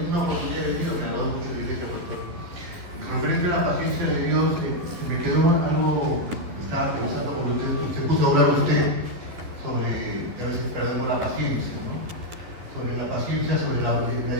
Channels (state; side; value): late; left; 11 ms